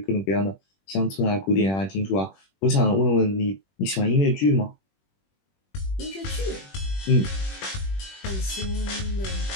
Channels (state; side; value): late; right; 21 ms